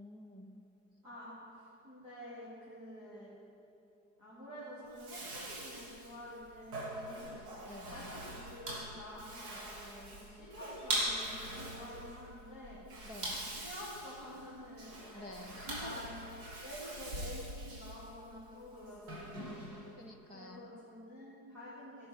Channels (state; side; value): late; left; 4.8 ms